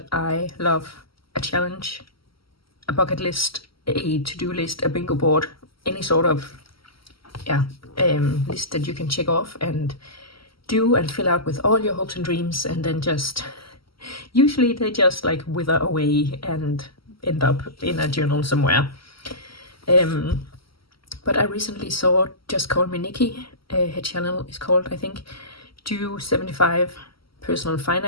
I love a challenge, a bucket list, a to-do list, a bingo board, any sort of yeah list that you can check off and do and fill out with all your hopes and dreams, and then just usually they just like wither away and end up in a journal somewhere. But I recently saw Just Call Me Nikki. Her channel is called, I think, Do 75 Personal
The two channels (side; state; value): right; late; 0.75 ms